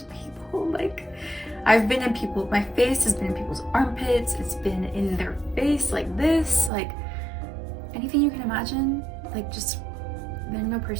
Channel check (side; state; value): left; drops out; at 6.7 s